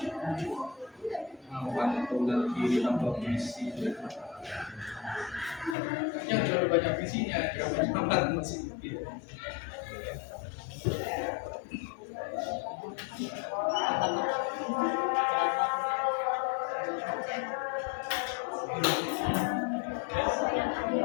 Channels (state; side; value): drops out; right; at 5.8 s